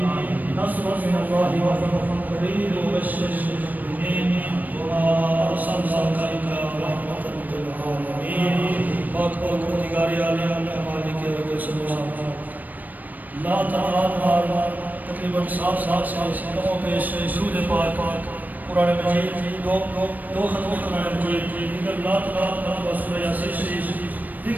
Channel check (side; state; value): left; late; 0.083 ms